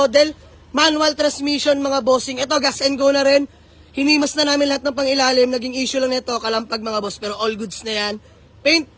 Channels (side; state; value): both; identical; correlation 1.00